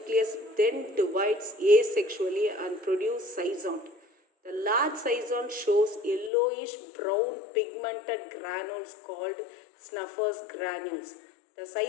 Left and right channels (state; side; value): drops out; right; at 6.3 s